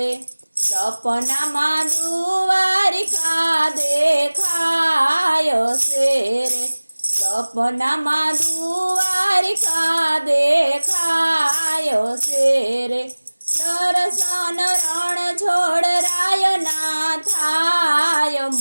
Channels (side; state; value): both; inverted; correlation -1.00